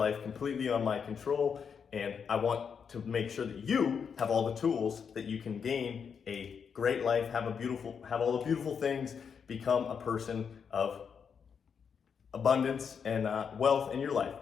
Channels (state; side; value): quieter; right; 6.7 dB